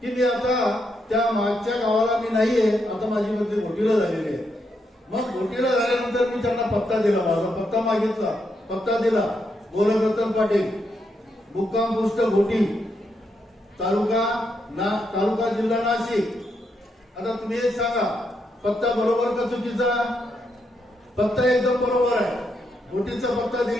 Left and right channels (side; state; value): both; normal; correlation 0.80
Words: की मी आता त्या मागच्या गावाला मी नाहीये, आता माझी बदली घोटीला झालेली आहे. मग घोटीला झाल्यानंतर मी त्यांना पत्ता दिला, माझा पत्ता मागितला, पत्ता दिला. गोरखरत्न पाटील, मुक्काम पोस्ट घोटी, तालुका जिल्हा नाशिक. आता तुम्ही एक सांगा, पत्ता बरोबर का चुकीचा? पत्ता एकदम बरोबर आहे. घोटीचा पत्ता